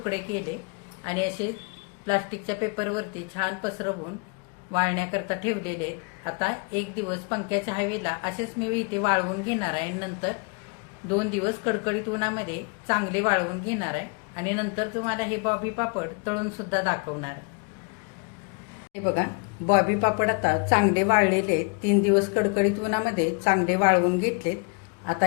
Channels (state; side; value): quieter; right; 34.7 dB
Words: केले आणि असे प्लास्टिकच्या पेपरवरती छान पसरवून वाळण्याकरता ठेवलेले. आता 1 दिवस पंख्याच्या हवेला असेच मी इथे वाळवून घेणार आहे. नंतर 2 दिवस कडकडीत उन्हामध्ये चांगले वाळवून घेणार आहे आणि नंतर तुम्हाला हे बॉबी पापड तळून सुद्धा दाखवणार आहे. हे बघा, बॉबी पापड आता चांगले वाळलेले. 3 दिवस कडकडीत उन्हामध्ये चांगले वाळवून घेतलेत. आता